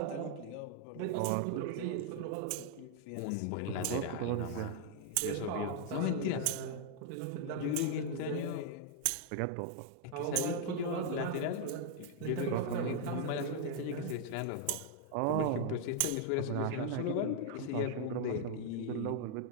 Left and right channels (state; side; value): different; both; correlation 0.00